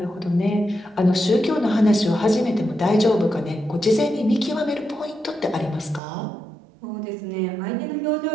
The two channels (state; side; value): drops out; left; at 6.0 s